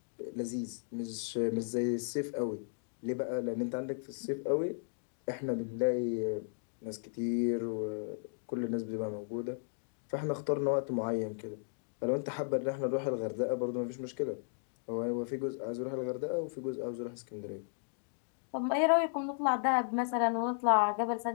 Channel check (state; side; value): silent; right; digital silence